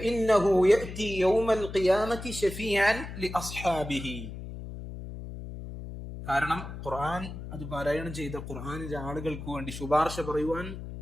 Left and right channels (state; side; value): noise; left; hum, 10 dB below the sound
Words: യഅതി യൗമൽ ഖിയാമത്തി ശഫീഅൻ ലിഅസ്ഹാബിഹി. കാരണം ഖുർആൻ അത് പാരായണം ചെയ്ത ഖുർആനിലെ ആളുകൾക്ക് വേണ്ടി ശുപാർശ പറയുവാൻ